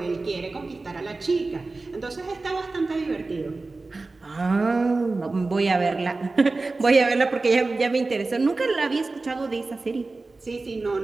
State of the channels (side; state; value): left; quieter; 3.5 dB